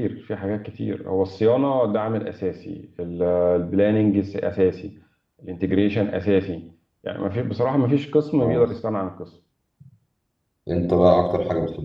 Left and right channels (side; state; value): both; identical; correlation 1.00